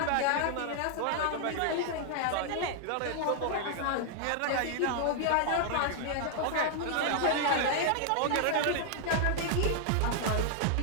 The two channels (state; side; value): different; both; correlation 0.00